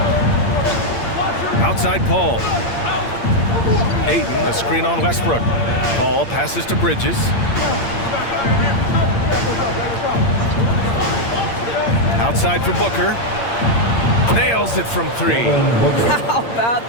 Outside Paul. Ayton, a screen on Westbrook. Ball passes to Bridges. Outside for Booker. Nails it from three. How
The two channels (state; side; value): late; right; 8.7 ms